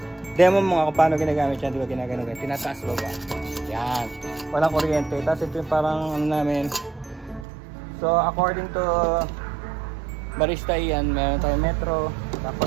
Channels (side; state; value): left; drops out; at 7.5 s